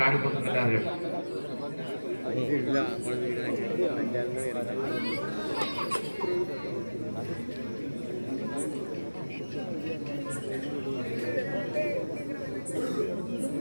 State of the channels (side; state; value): both; inverted; correlation -1.00